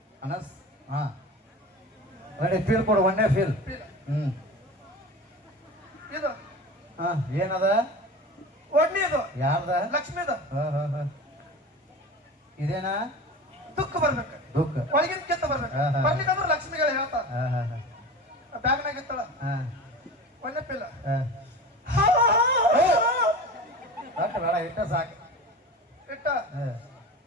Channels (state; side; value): normal; both; correlation 0.33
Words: ಅನಸ್. ಹಾ ಒಳ್ಳೆ ಫೀಲ್ ಕೊಡು ಒಂದೇ ಫೀಲ್. ಇದು ಹಾ ಏನದ ಒಡ್ನಿದು ಯಾರ್ದ ಲಕ್ಷ್ಮಿದು ಇದೇನಾ ದುಃಖ ಬರ್ಬೇಕು ದುಃಖ ಒಳಗಿನ ಕಿತ್ತ ಬರ್ಬೇಕು. ಬರ್ಲಿಕ್ಕಂದ್ರೆ ಲಕ್ಷ್ಮಿಗಳು ಹೇಳ್ತಾರ ಬ್ಯಾಗ್ನಾಗ ಇತ್ತಳ ಒಳ್ಳೆ ಪಿಲ್ಲ ಬೇಡ ಇಟ್ಟ ಸಾಕು ಇಟ್ಟ